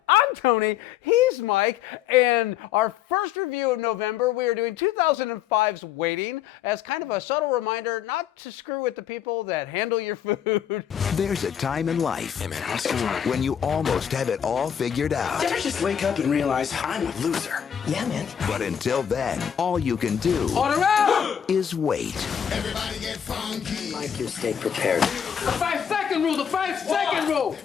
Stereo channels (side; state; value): right; quieter; 8.9 dB